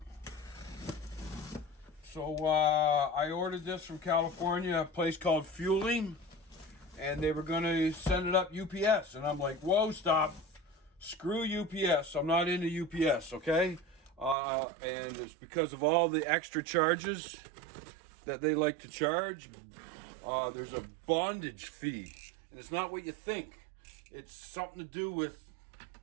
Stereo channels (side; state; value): left; drops out; at 14.4 s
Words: So I ordered this from California, a place called Fueling, and they were going to send it up UPS. And I'm like, whoa, stop. Screw UPS. I'm not into UPS, okay? And it's because of all the extra charges that they like to charge. There's a bondage fee, and it's not what you think. It's something to do with